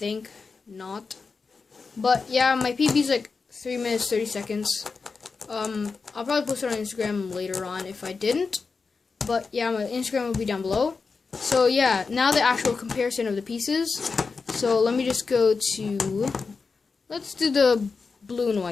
Not. But yeah, my PB is like 3 minutes, 30 seconds. I'll probably post it on Instagram later on if I didn't. But yeah, my Instagram will be down below. So yeah, now the actual comparison of the pieces. So let me just go to, let's do the blue and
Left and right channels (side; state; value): right; quieter; 4.7 dB